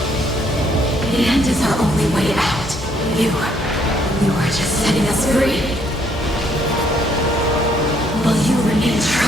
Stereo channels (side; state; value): both; normal; correlation 0.68